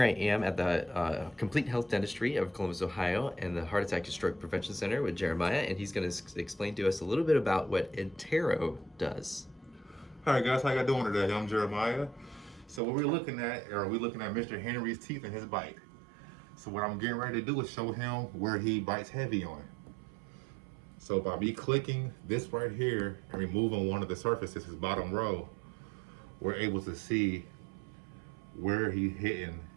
I am at the Complete Health Dentistry of Columbus, Ohio, and the Heart Attack and Stroke Prevention Center with Jeremiah, and he's going to explain to us a little bit about what iTero does. Hi guys, how y'all doing today? I'm Jeremiah. So what we're looking at, Mr. Henry's teeth and his bite. So what I'm getting ready to do is show him where he bites heavy on. So by me clicking this right here and removing one of the surfaces, his bottom row, we're able to see where he's hitting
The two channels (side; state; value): left; drops out; at 12.8 s